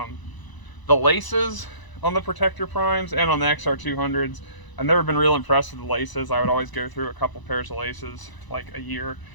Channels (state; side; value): late; right; 1.0 ms